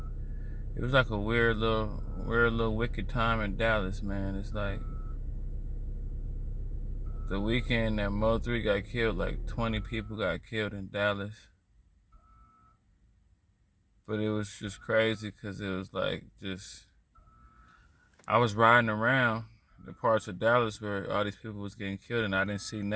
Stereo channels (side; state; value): both; identical; correlation 1.00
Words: It was like a weird little wicked time in Dallas, man. It's like the weekend that Mo3 got killed, like 20 people got killed in Dallas. But it was just crazy because it was like I was riding around the parts of Dallas where all these people was getting killed and I didn't see